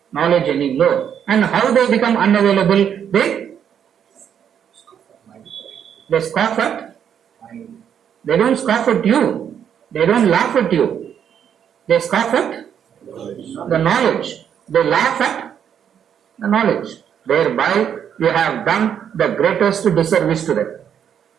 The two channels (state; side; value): quieter; left; 8.6 dB